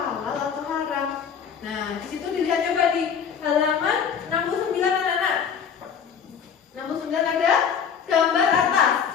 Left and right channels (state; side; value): quieter; right; 7.2 dB